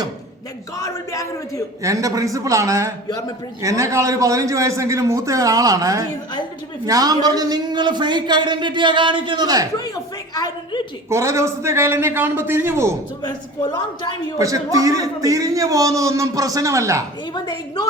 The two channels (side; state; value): both; normal; correlation 0.38